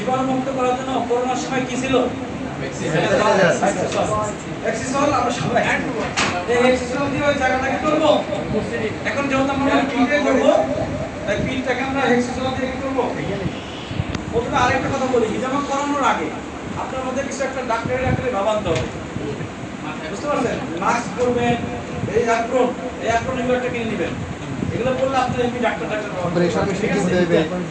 করার জন্য করোনার সময় কি ছিল? এক্সিসল। আমরা সবাই এই এক্সিসল দিয়ে ওই জায়গাটাকে করব। এখন যেহেতু আমরা পিঠে করব, তাই পিঠটাকে আমরা এক্সিসল দিয়ে কি করব? প্রথমে আরেকটা কথা বলি, হিজামা করানোর আগে আপনার মধ্যে কিছু একটা ডাক্তারি ভাবান্ত হবে, বুঝতে পারছেন? মাস্ক পরবেন, এই অ্যাপ্রন এগুলো একটা কিনে নেবেন। এগুলো বললে আপনি এমনি ডাক্তার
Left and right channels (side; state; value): both; identical; correlation 1.00